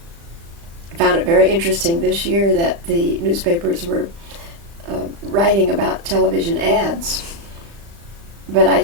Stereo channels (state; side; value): late; left; 35 ms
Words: found it very interesting this year that the newspapers were writing about television ads, but I